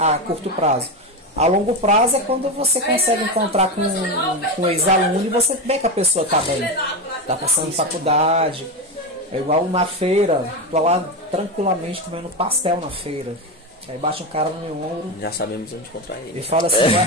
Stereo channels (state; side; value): normal; both; correlation 0.16